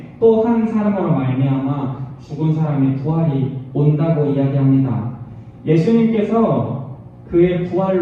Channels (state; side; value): identical; both; correlation 1.00